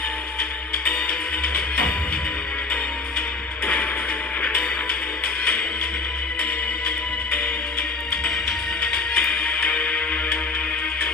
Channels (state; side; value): quieter; right; 3.9 dB